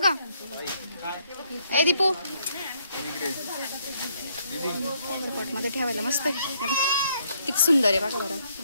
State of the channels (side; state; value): both; inverted; correlation -0.70